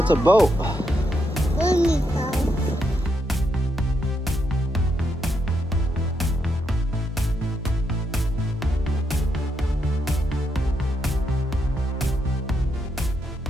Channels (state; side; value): normal; both; correlation 0.80